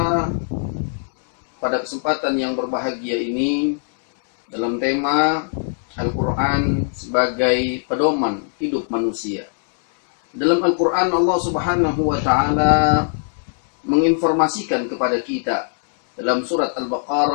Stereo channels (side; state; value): right; silent; digital silence